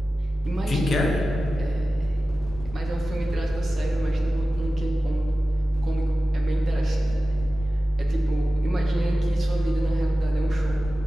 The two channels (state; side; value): normal; both; correlation 0.95